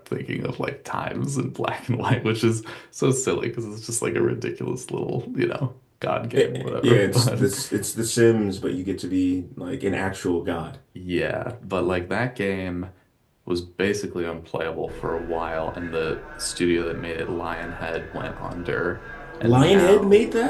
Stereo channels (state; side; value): identical; both; correlation 1.00